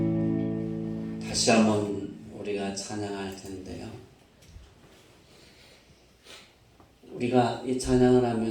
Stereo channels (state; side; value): identical; both; correlation 1.00